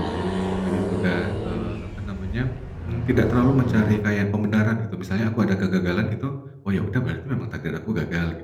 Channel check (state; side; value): identical; both; correlation 1.00